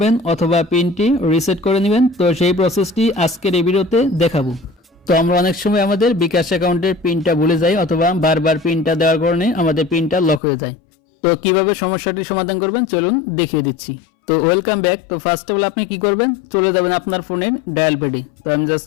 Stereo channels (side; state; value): right; drops out; at 10.4 s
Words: অথবা পিনটি রিসেট করে নেবেন, তো সেই প্রসেসটি আজকের এই ভিডিওতে দেখাবো। তো আমরা অনেক সময় আমাদের বিকাশ অ্যাকাউন্টের পিনটা ভুলে যাই অথবা বারবার পিনটা দেওয়ার কারণে আমাদের পিনটা লক হয়ে যায়। তো কিভাবে সমস্যাটির সমাধান করবেন চলুন দেখিয়ে দিচ্ছি। তো ওয়েলকাম ব্যাক। তো ফার্স্ট অফ অল আপনি কি করবেন, চলে যাবেন আপনার ফোনের ডায়াল প্যাডে। তো আমি জাস্ট